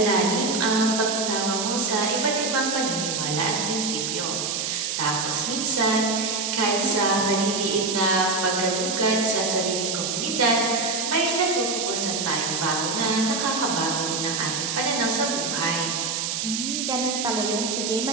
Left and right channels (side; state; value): right; noise; hiss, 1 dB below the sound